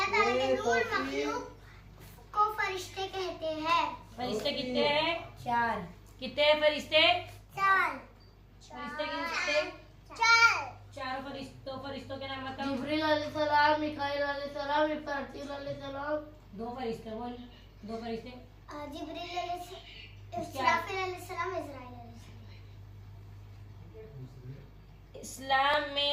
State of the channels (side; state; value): both; identical; correlation 1.00